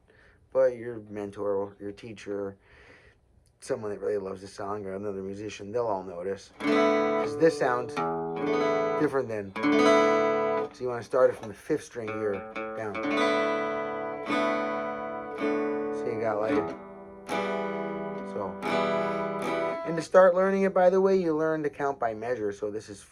But your mentor, your teacher, someone that really loves the song, or another musician, they'll all notice. Because this sounds different than... So you want to start it from the 5th string here, down. So you got like... So... And to start learning it, by the way, you learn to count by measure. So this is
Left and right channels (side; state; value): both; identical; correlation 1.00